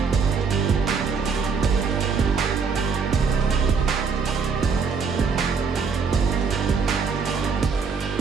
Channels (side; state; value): left; quieter; 5.4 dB